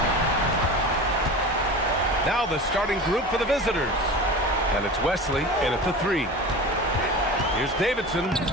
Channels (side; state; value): both; normal; correlation 0.33